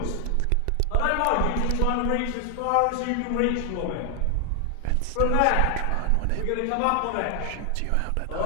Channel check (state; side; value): different; both; correlation 0.00